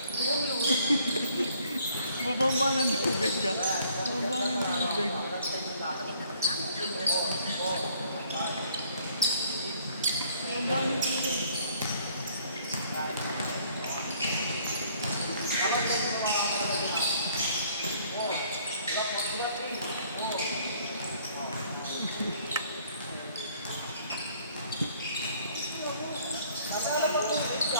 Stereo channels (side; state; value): both; inverted; correlation -0.61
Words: Bubomba ng tubig ka. Bubomba ng tubig. Bubomba ng tubig.